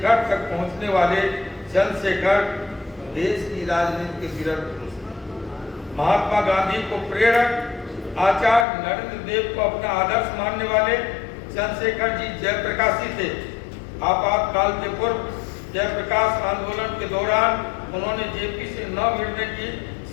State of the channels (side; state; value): right; drops out; at 8.7 s